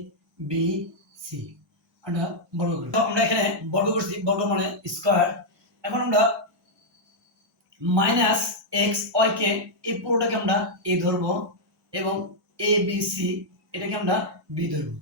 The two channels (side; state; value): both; normal; correlation -0.04